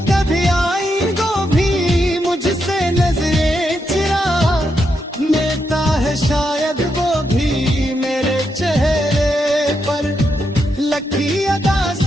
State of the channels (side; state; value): both; normal; correlation 0.82